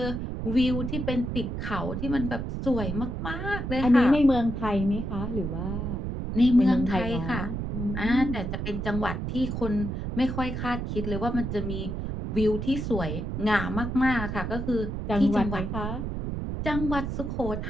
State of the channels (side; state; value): right; noise; rumble, 4 dB below the sound